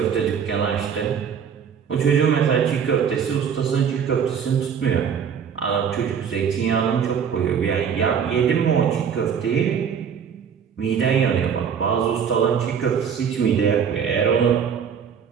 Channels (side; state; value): left; quieter; 7.4 dB